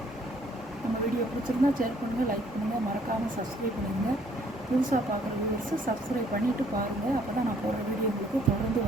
நம்ம வீடியோ பிடிச்சிருந்தா ஷேர் பண்ணுங்கள், லைக் பண்ணுங்கள், மறக்காமல் சப்ஸ்கிரைப் பண்ணுங்கள். புதுசாக பார்க்குற வியூவர்ஸு சப்ஸ்கிரைப் பண்ணிவிட்டு பாருங்கள். அப்போ தான் நான் போடுற வீடியோ உங்களுக்கு தொடர்ந்து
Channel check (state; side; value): normal; both; correlation 0.63